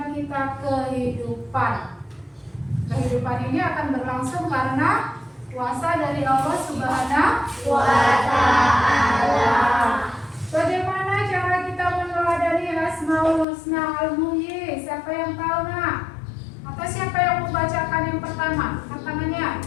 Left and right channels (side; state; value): right; drops out; at 13.5 s